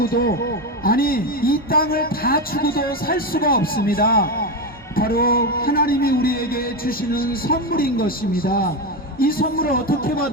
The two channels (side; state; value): both; normal; correlation 0.14